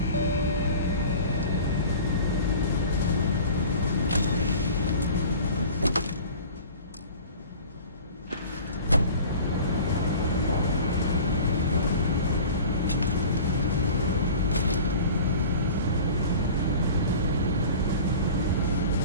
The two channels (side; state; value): both; inverted; correlation -0.41